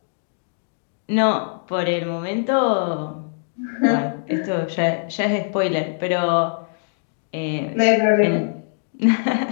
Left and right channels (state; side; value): silent; right; digital silence